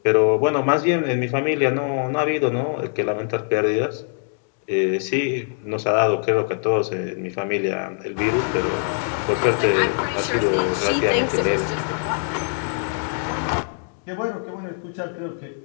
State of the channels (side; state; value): right; silent; digital silence